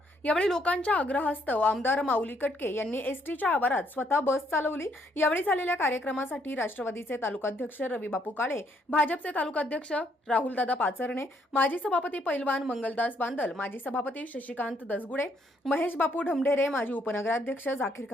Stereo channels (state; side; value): normal; both; correlation 0.71